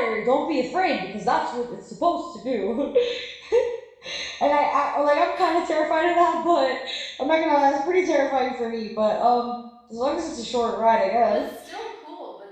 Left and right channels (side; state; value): both; identical; correlation 1.00